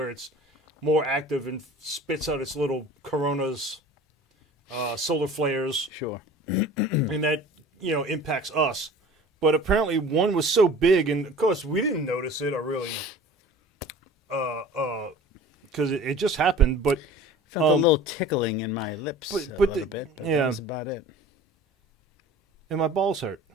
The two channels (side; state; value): both; normal; correlation 0.43